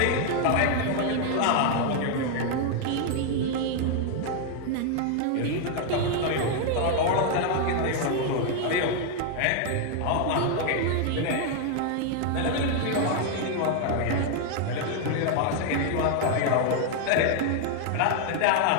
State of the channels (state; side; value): different; both; correlation 0.00